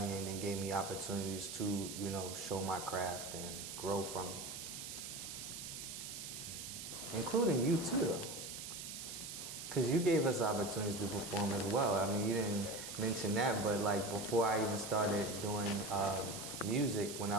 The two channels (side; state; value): right; noise; hiss, 8 dB below the sound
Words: and then gave me opportunities to, show my craft and grow from it. Including you too, because you gave us opportunities to perform as well. I mean, you didn't mention that, but like before I even started doing music, when